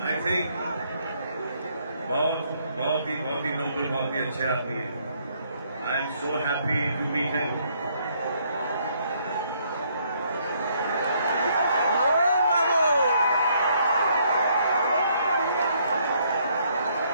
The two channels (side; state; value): both; inverted; correlation -0.69